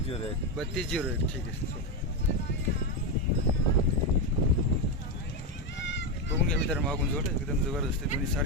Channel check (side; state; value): both; normal; correlation 0.09